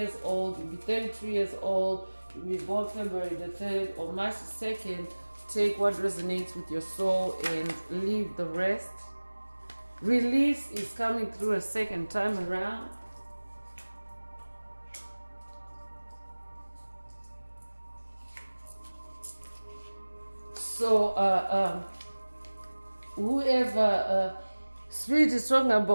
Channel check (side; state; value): both; inverted; correlation -1.00